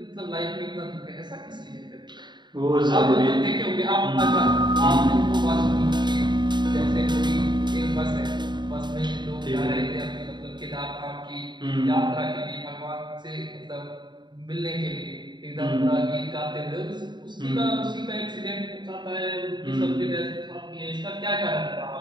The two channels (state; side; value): late; left; 0.22 ms